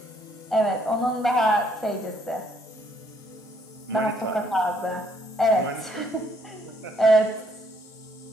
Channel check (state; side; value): normal; both; correlation 0.68